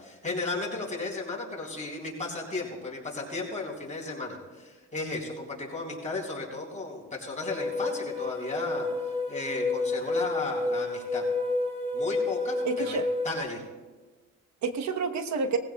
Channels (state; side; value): normal; both; correlation 0.40